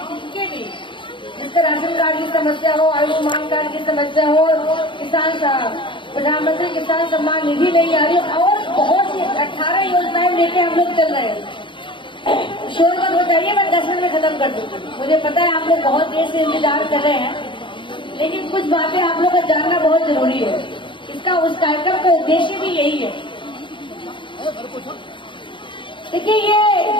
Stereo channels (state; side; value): late; right; 0.24 ms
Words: जिनके भी, जिसका राशन कार्ड की समस्या हो, आयुष्मान कार्ड की समस्या हो, प्रधानमंत्री किसान सम्मान निधि नहीं आ रही, और बहुत सी 18 योजनाएं लेके हम लोग चल रहे हैं। शोर मत बताइए, मैं 10 मिनट में खत्म कर दूंगी। मुझे पता है आप लोग बहुत देर से इंतजार कर रहे हैं, लेकिन कुछ बातें आप लोग को जानना बहुत जरूरी है। इसका उस कार्यक्रम का उद्देश्य भी यही है। देखिए ये